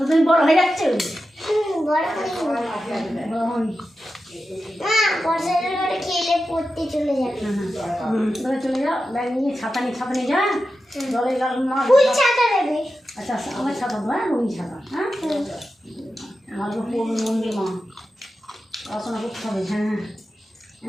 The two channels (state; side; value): normal; both; correlation 0.91